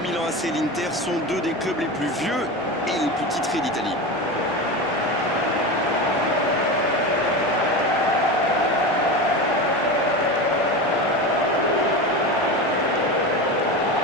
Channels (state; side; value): normal; both; correlation 0.24